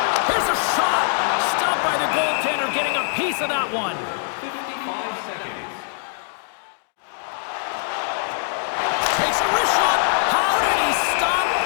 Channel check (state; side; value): silent; right; digital silence